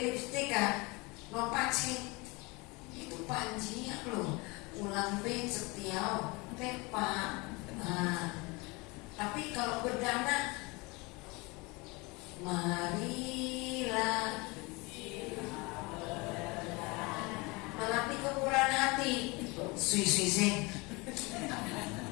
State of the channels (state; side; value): quieter; right; 26.0 dB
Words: lipstick no pakai itu panjinya lo. Ulang ben setiau pepa. Tapi kalau berdana, marilah melatih kemurahan hati. Sui.